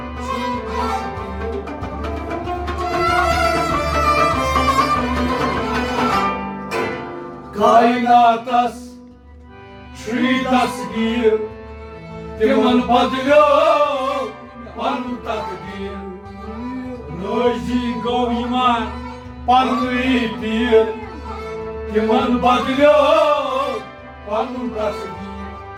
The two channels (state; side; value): identical; both; correlation 1.00